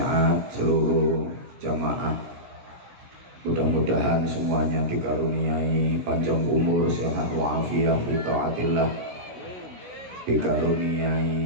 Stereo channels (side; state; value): left; late; 17 ms